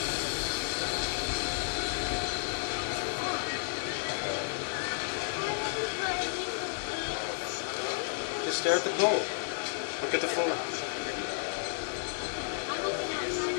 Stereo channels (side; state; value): right; silent; digital silence